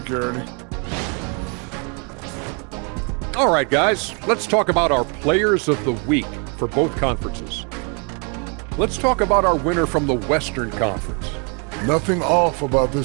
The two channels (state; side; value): quieter; left; 35.9 dB